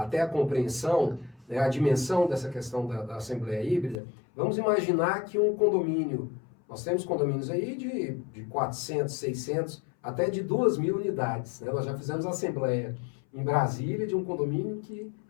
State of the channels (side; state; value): right; drops out; at 4.0 s